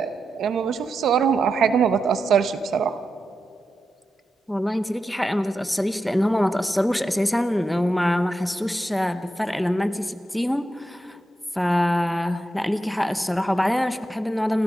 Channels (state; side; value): normal; both; correlation 0.88